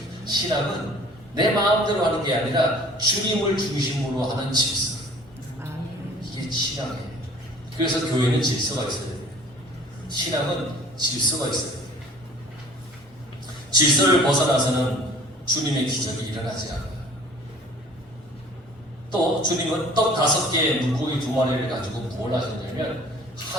신앙은 내 마음대로 하는 게 아니라 주님을 중심으로 하는 질서. 이게 신앙이에요. 그래서 교회는 질서가 있어야 돼요. 신앙은 질서가 있어야 돼요. 질서를 벗어나서는 주님의 기적이 일어나지 않아요. 또 주님은 떡 5개, 물고기 2마리를 가지고 뭘 하셨냐면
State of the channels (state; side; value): normal; both; correlation 0.49